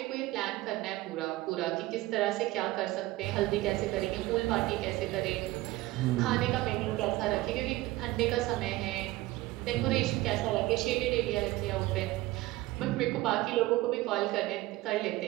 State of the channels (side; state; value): left; quieter; 18.2 dB